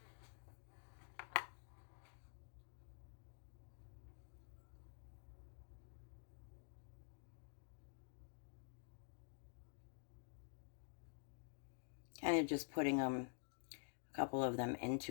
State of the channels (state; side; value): silent; right; digital silence